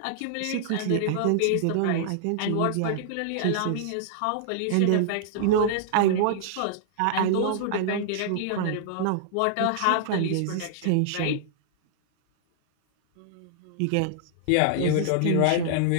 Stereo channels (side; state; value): both; different; correlation -0.01